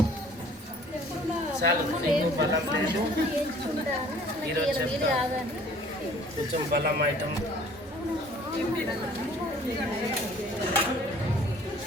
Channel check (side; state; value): both; normal; correlation 0.53